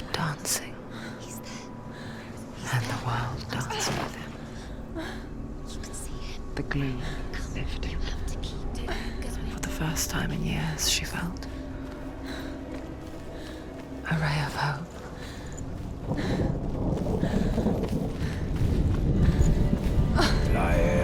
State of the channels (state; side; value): identical; both; correlation 1.00